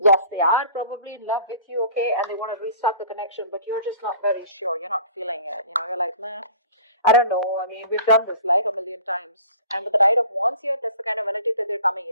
they are probably in love with you, okay? And they want to restart the connection, but you're just not very sure. You're not feeling it. You're like, nah. I don't know. I mean, we've done this like a million times. And with the Knight of Wands here, that's the kind of energy that they're coming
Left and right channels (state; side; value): inverted; both; correlation -0.46